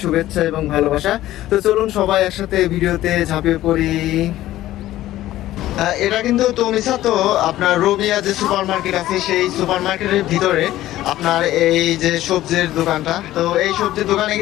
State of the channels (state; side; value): quieter; right; 14.7 dB